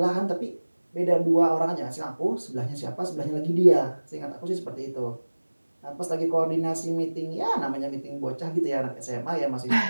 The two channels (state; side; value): inverted; both; correlation -1.00